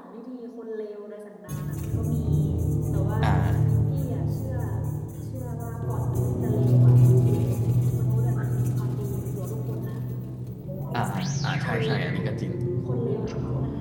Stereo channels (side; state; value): both; identical; correlation 1.00